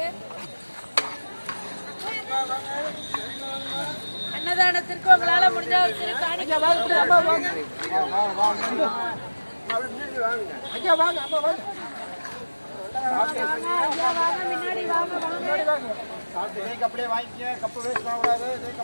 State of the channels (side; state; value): both; inverted; correlation -1.00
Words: அன்னதானத்திற்கு உங்களால முடிஞ்ச ஒரு சிறு காணிக்கை முன்னாடி வாங்க அப்படியே வாங்கிக்க. கப்பு வேஸ்ட் பண்ணக்கூடாது. இதே